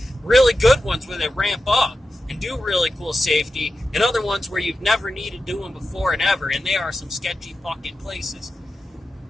Really good ones where they ramp up and do really cool safety, and other ones where you've never needed doing before and ever, and they are some sketchy fucking places.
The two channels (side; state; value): both; normal; correlation 0.91